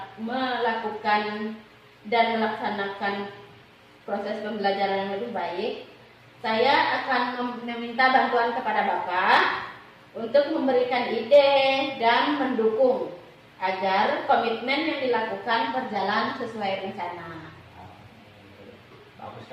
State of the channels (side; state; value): both; identical; correlation 1.00